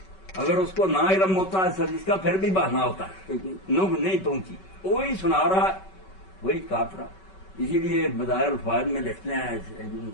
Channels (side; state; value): right; late; 5.3 ms